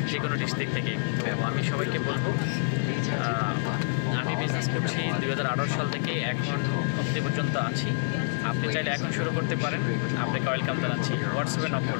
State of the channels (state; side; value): silent; right; digital silence